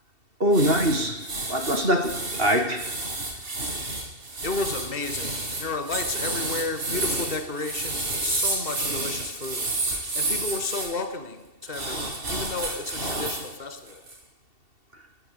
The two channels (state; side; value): late; left; 2.7 ms